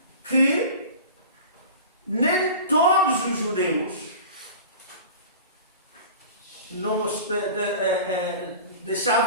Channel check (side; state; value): both; inverted; correlation -0.37